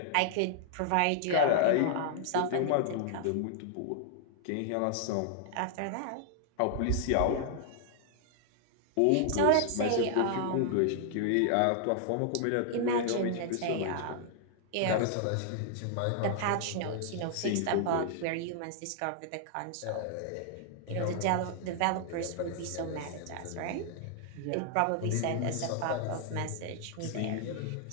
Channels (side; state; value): both; different; correlation -0.01